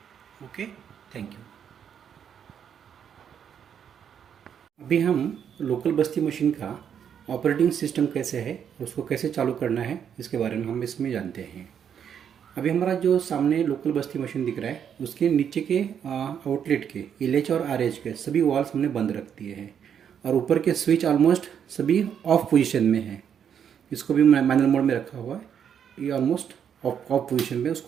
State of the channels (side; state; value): left; quieter; 8.3 dB